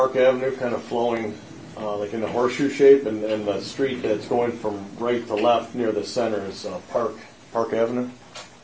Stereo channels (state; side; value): identical; both; correlation 1.00